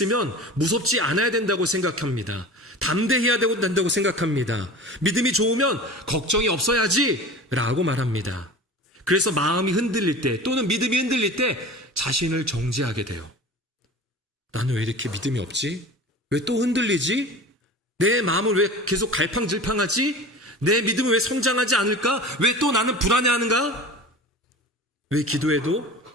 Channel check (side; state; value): both; normal; correlation 0.36